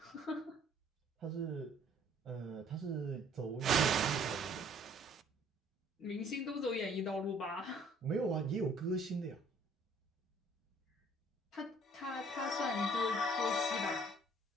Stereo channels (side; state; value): both; normal; correlation 0.58